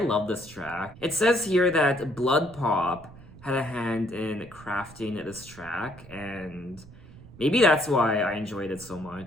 this track. It says here that Blood Pop had a hand in crafting this track, and maybe that's why I enjoyed it so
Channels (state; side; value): noise; right; rumble, 19 dB below the sound